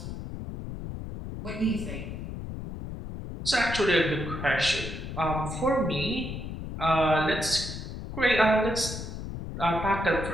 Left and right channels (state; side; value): noise; left; rumble, 7 dB below the sound